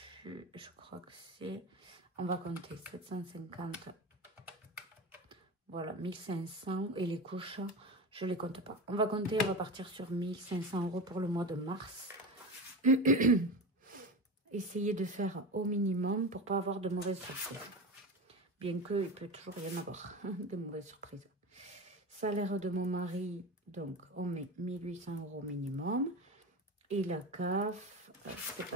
je crois que c'est... On va compter 750... Voilà, 1500. Et les couches, je les compte pas. On va compter, on va partir sur 1500 euros pour le mois de mars. Essayez de faire au minimum pour pas avoir de mauvaises surprises. Bien qu'il peut toujours y en avoir de mauvaises surprises. Salaire de mon mari, donc on met 1800 euros minimum. Et la CAF, c'est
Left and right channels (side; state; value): both; normal; correlation 0.25